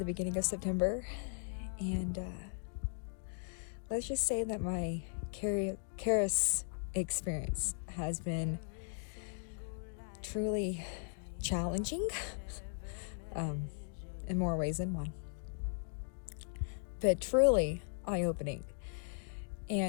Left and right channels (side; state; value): right; silent; digital silence